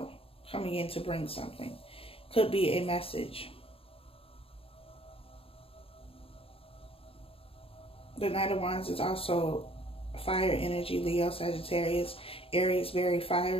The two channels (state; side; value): late; right; 0.27 ms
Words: coming in to bring something. Could be a message. The Knight of Wands is also fire energy, Leo, Sagittarius, Aries, very